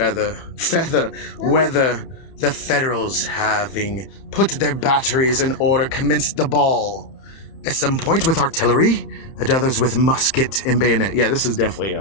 the Federals, having put their batteries in order, commenced the ball. At some point with artillery, at others with musket and bayonet. Yeah, this is definitely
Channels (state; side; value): late; right; 31 ms